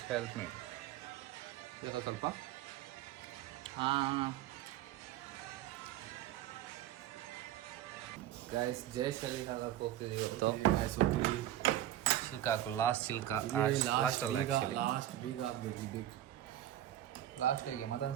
help me. ಬೇಕಾ ಸ್ವಲ್ಪ? ಹಾಂ ಗೈಸ್, ಜಯಶಾಲಿ ಹಾಕಕ್ಕೆ ಹೋಗ್ತಿದ್ದೀವಿ ಇವತ್ತು. ಸಿಲ್ಕ್ ಹಾಕು, ಲಾಸ್ಟ್ ಸಿಲ್ಕ್ ಲಾಸ್ಟ್ ಅಲ್ಲ, ಲಾಸ್ಟ್ ಬೀಗ ಹಾಕ್ಬೇಕು. ಲಾಸ್ಟ್ ಹೇಗೆ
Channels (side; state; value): left; quieter; 12.9 dB